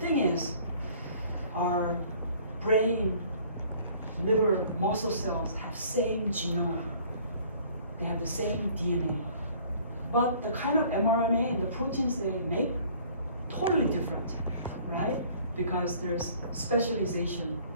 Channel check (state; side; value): inverted; both; correlation -0.54